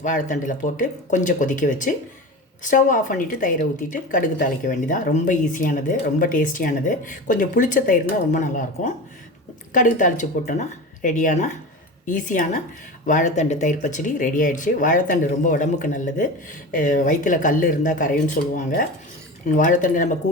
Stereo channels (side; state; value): both; normal; correlation 0.29